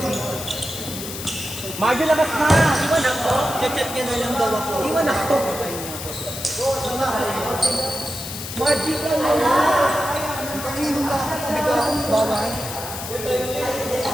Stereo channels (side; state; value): left; noise; hiss, 8 dB below the sound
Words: dito. Marjo, labas na! Iwan ako. Chat-chat niya na lang daw ako. Iwan ako. Margie ka na lang. Pag-inom lang ako. Bigaw. Bawal.